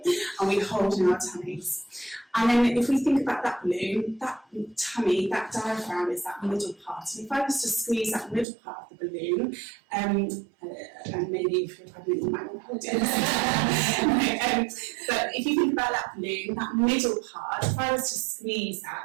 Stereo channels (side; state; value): left; drops out; at 8.5 s